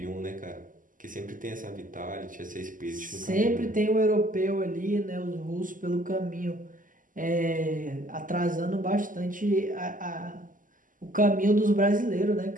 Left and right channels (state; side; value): late; left; 0.38 ms